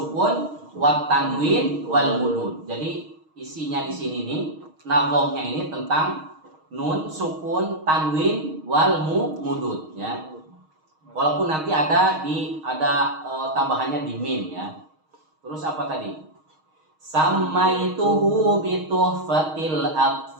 wat tanwin wal mudud. Jadi isinya di sini nih, nazomnya ini tentang nun sukun, tanwin wal mudud ya. Walaupun nanti ada tambahannya di mim ya. Terus apa tadi? Samaituhu bituhfatil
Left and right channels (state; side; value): late; left; 6.4 ms